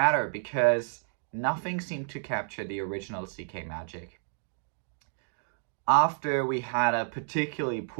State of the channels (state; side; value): silent; left; digital silence